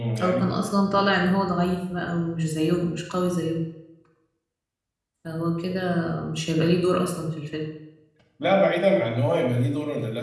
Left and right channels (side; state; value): both; identical; correlation 1.00